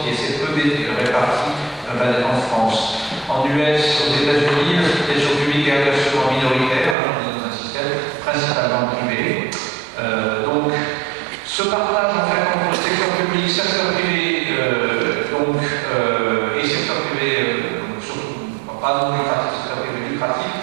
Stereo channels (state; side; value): drops out; left; at 7.0 s